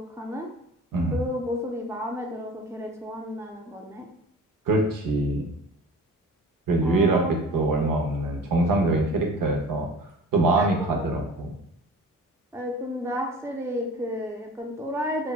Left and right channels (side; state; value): both; normal; correlation 0.41